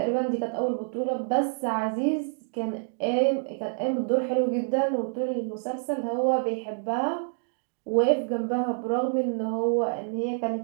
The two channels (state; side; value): silent; left; digital silence